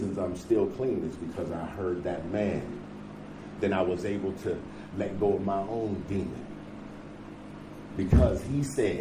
I'm still clean is because I heard that man. Then I was able to let go of my own demon. Because he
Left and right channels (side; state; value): both; identical; correlation 1.00